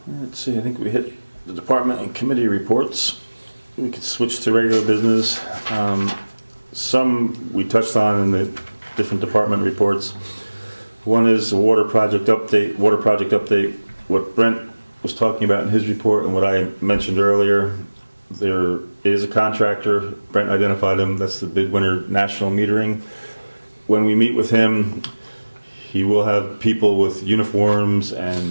Let's see. I think we hit the department and committee reports. We could switch to regular business. Some we touched on in the different department reports. One is the water project update. What Brent was talking about in his report and what I mentioned earlier. There is a contractor. Brent identified him. That's the Midwinter National Metering. When we meet with him, he will have people with uniforms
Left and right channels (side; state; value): both; inverted; correlation -1.00